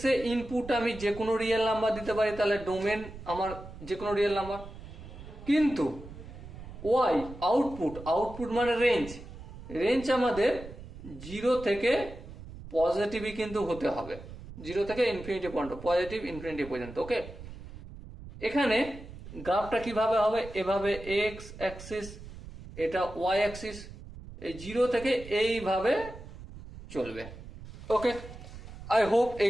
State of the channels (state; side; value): noise; right; rumble, 14 dB below the sound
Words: এ ইনপুট আমি যে কোনো রিয়েল নাম্বার দিতে পারি, তাহলে ডোমেন আমার যে কোনো রিয়েল নাম্বার। কিন্তু ওয়াই আউটপুট, আউটপুট মানে রেঞ্জ, রেঞ্জ আমাদের 0 থেকে পজিটিভই কিন্তু হতে হবে, 0 থেকে ইনফিনিটি পর্যন্ত, পজিটিভ ইনফিনিটি পর্যন্ত। ওকে, এখানে গ্রাফটা কিভাবে হবে, এভাবে এক্স অ্যাক্সিস, এটা ওয়াই অ্যাক্সিস, এই 0 থেকে এইভাবে চলবে। ওকে, আই হোপ এই